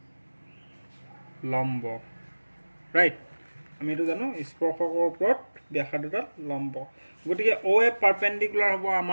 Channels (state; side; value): inverted; both; correlation -1.00